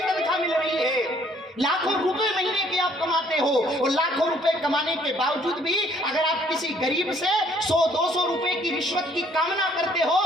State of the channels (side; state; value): both; normal; correlation 0.62